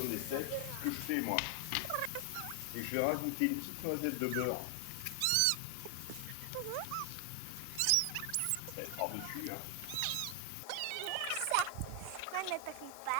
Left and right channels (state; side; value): different; both; correlation 0.00